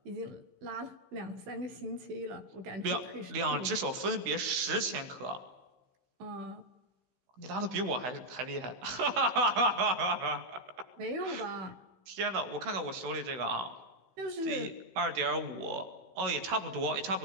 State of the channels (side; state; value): left; late; 15 ms